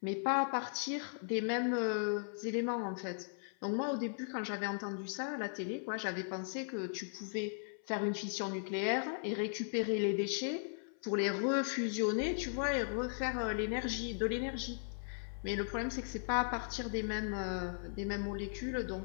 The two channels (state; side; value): silent; right; 53 dB below the other